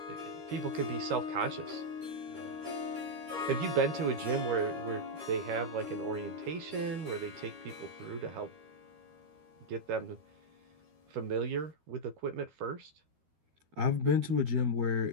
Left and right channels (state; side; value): late; left; 13 ms